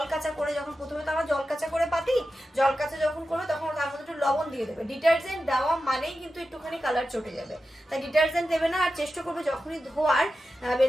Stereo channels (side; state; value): both; normal; correlation 0.92